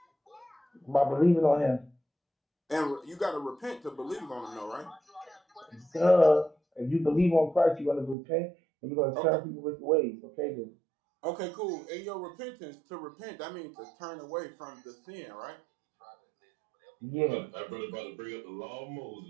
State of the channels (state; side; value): drops out; left; at 8.2 s